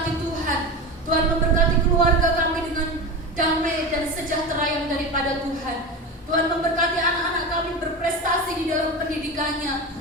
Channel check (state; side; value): normal; both; correlation 0.24